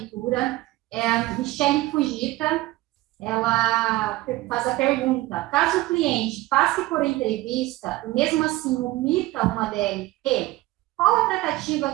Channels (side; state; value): left; quieter; 18.5 dB